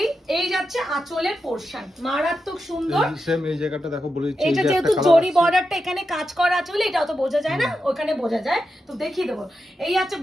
এই যাচ্ছে আঁচলের পোরশন, মারাত্মক সুন্দর। সেম এই জায়গাটা দেখো বলে দিচ্ছি, এটা যেহেতু জরি বর্ডারটা এখানে কাজ করা আছে বলে এটা অত বোঝা যায় না, ওখানে বোঝা যায়, তো দেখিয়ে দেবো। এই আছে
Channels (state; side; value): normal; both; correlation 0.88